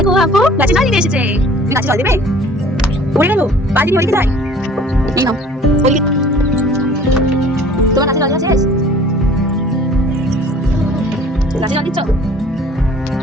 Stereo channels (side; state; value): both; normal; correlation 0.51